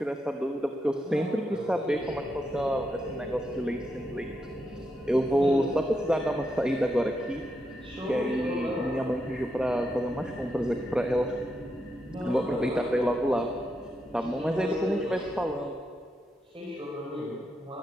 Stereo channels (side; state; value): both; normal; correlation 0.83